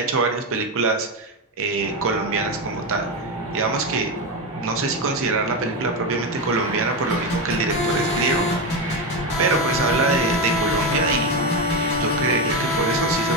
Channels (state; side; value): normal; both; correlation 0.13